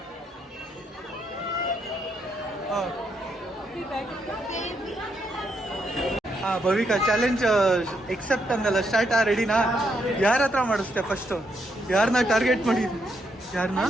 ಹಾಂ ಹಾಂ, ಭವಿಕಾ ಚಾಲೆಂಜ್ ಎಕ್ಸೆಪ್ಟ್ ಅಂದಲ್ಲ, ಸ್ಟಾರ್ಟ್. ರೆಡಿನಾ? ಯಾರ ಹತ್ರ ಮಾಡಿಸ್ತೆ ಫಸ್ಟು? ಯಾರನ್ನ ಟಾರ್ಗೆಟ್ ಮಾಡಿದ್ವಿ? ಯಾರನ್ನ?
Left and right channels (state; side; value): normal; both; correlation 0.77